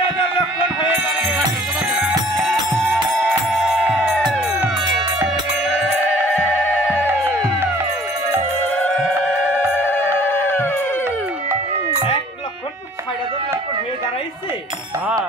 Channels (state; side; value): normal; both; correlation 0.53